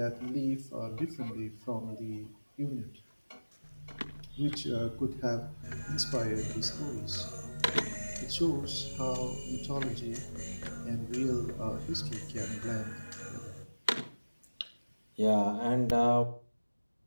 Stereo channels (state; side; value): inverted; both; correlation -1.00